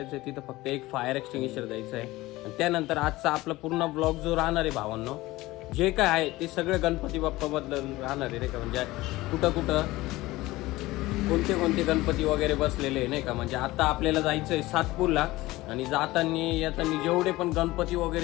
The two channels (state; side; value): quieter; right; 18.8 dB